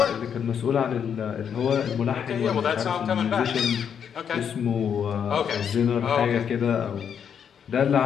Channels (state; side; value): quieter; right; 7.8 dB